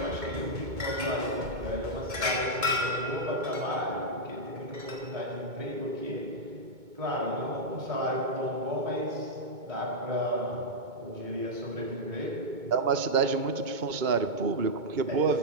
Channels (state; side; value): late; left; 2.2 ms